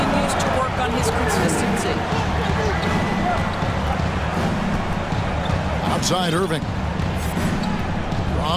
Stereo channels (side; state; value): both; identical; correlation 1.00